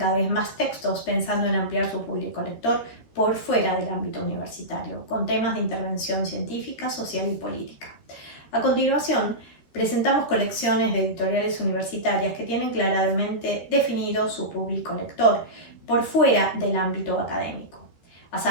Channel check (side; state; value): right; late; 13 ms